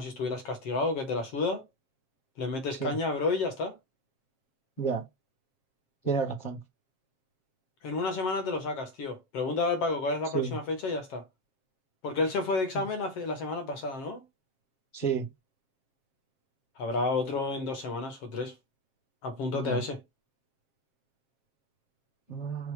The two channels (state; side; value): late; right; 7.5 ms